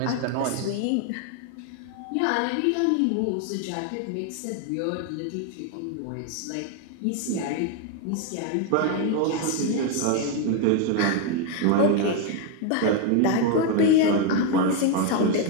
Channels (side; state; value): both; different; correlation 0.01